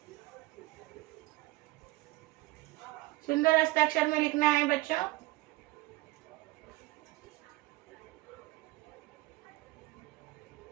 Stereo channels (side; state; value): left; quieter; 19.8 dB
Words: सुंदर हस्ताक्षर में लिखना है बच्चों।